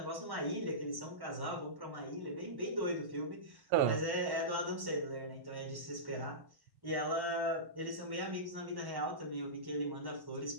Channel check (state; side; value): late; left; 1.1 ms